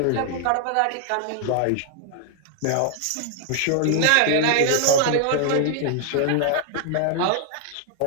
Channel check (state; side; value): different; both; correlation 0.00